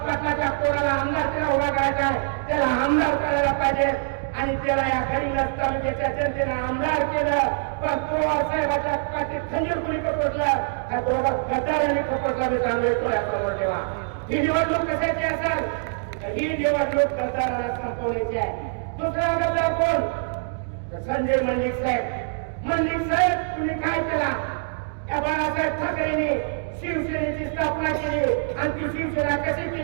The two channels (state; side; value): silent; left; digital silence